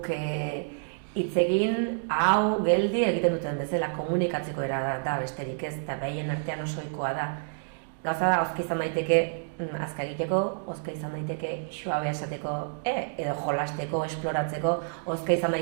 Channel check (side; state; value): left; silent; digital silence